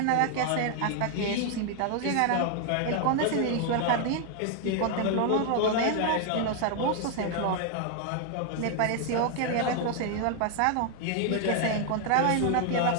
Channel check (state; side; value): different; both; correlation 0.00